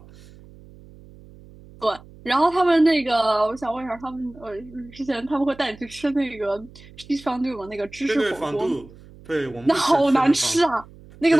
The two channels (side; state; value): right; noise; hum, 22 dB below the sound